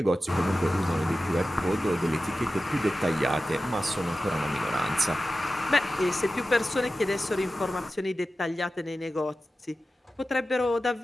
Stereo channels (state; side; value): normal; both; correlation 0.94